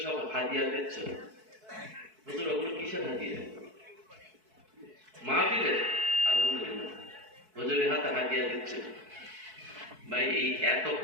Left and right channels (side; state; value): left; late; 4.6 ms